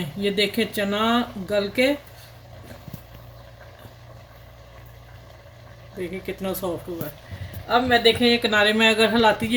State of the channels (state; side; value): identical; both; correlation 1.00